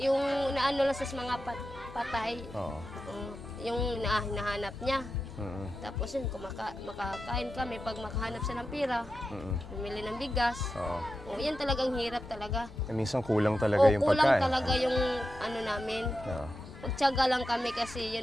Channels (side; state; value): both; normal; correlation 0.90